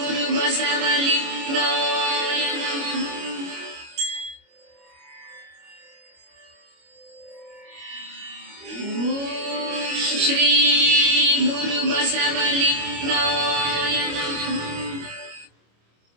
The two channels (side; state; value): left; late; 25 ms